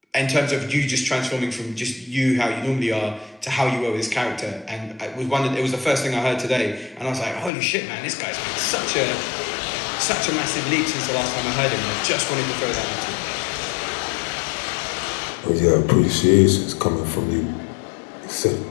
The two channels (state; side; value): drops out; right; at 7.5 s